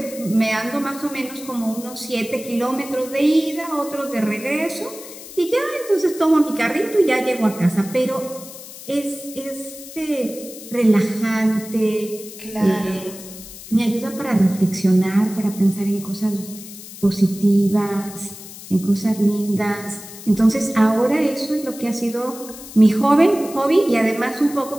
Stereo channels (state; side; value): noise; left; hiss, 15 dB below the sound